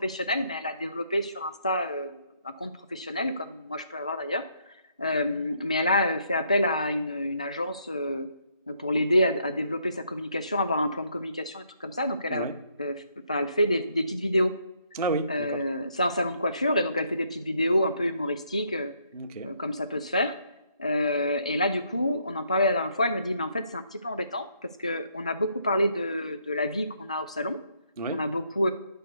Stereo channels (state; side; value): inverted; both; correlation -0.71